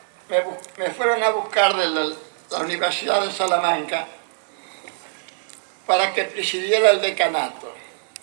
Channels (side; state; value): left; silent; digital silence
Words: me fueron a buscar de la Universidad de Salamanca para que presidiera el decanato.